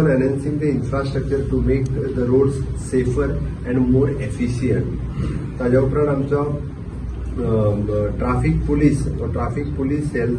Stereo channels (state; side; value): identical; both; correlation 1.00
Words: enhancing the infrastructure to make the roads safer and more efficient. ताज्या उपरांत आमचो ट्रॅफिक पुलीस सेल